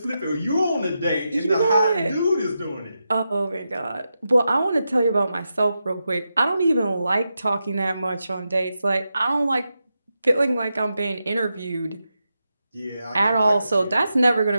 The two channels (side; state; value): both; inverted; correlation -0.88